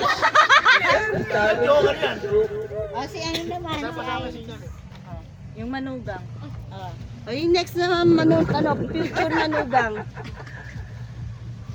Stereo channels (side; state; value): both; identical; correlation 1.00